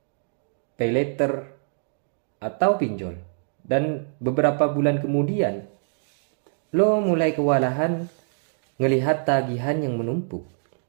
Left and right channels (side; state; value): left; silent; digital silence